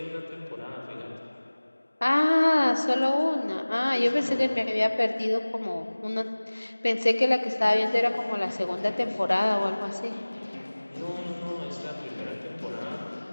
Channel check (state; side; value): inverted; both; correlation -1.00